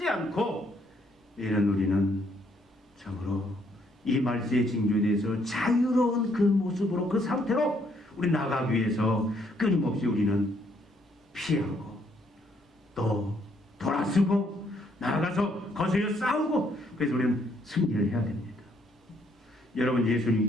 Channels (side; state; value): both; normal; correlation 0.70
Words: 않고 우리는 참으로 이 말세의 징조에 대해서 자유로운 그 모습으로, 그 상태로 우리 나가기 위해서 끊임없이 우리는 피하고 또 돌아서고 나아가서 거슬려 싸우고, 그래서 우리는 승리를 해야 됩니다. 여러분,